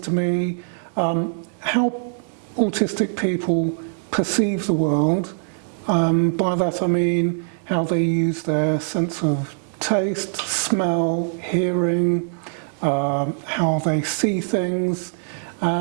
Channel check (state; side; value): silent; left; digital silence